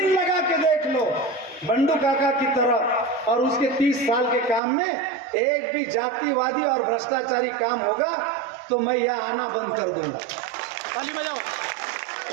लगा के देख लो बंडू काका की तरह, और उसके 30 साल के काम में एक भी जातिवादी और भ्रष्टाचारी काम होगा तो मैं यहाँ आना बंद कर दूंगा। ताली बजाओ।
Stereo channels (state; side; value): drops out; left; at 4.6 s